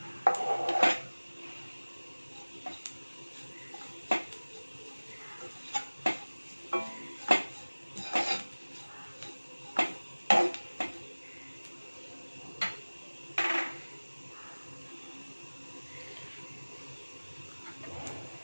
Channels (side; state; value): both; inverted; correlation -1.00